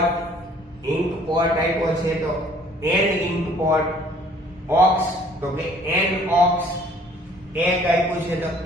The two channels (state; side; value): normal; both; correlation 0.57